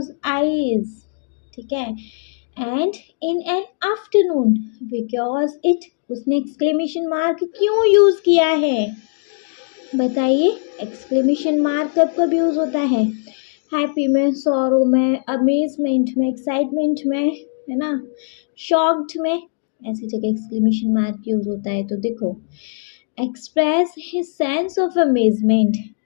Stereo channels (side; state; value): right; silent; digital silence